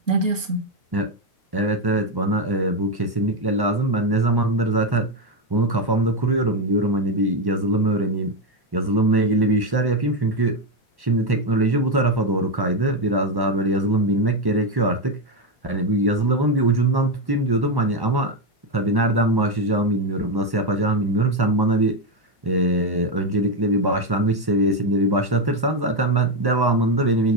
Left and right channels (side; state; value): left; late; 1.1 ms